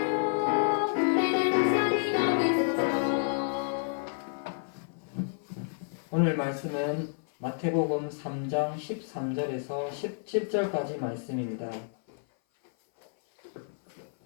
오늘 말씀은 마태복음 3장 13절에서 17절까지 말씀입니다.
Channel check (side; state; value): right; silent; 58 dB below the other